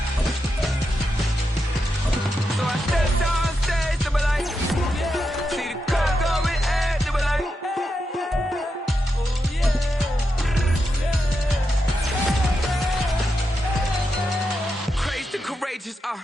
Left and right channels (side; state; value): both; normal; correlation 0.86